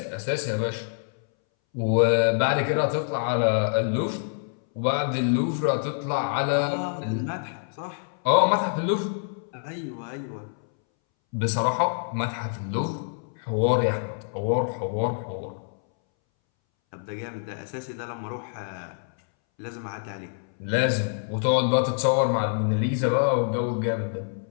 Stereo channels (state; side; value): silent; right; 61 dB below the other